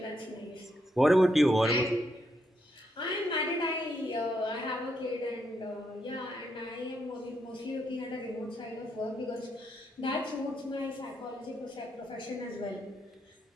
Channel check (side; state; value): both; normal; correlation 0.79